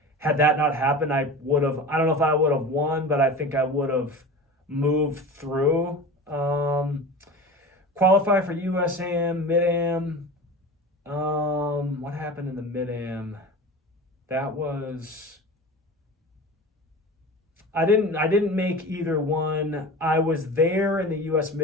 had that not happened, I don't know if I would have won, but I think I would have moved through. Qualify for USAM, Mid-Am. What happened in the Mid-Am? That was, I didn't make either one. I was there in the US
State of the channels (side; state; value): both; normal; correlation 0.33